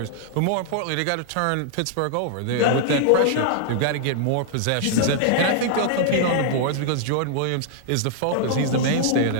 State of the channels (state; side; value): different; both; correlation -0.01